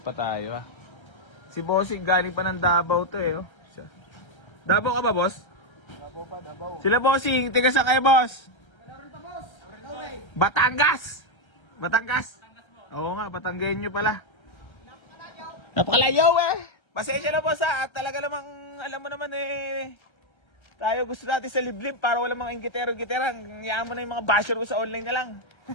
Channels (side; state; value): right; late; 1.3 ms